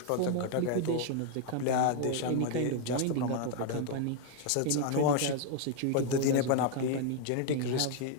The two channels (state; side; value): different; both; correlation 0.00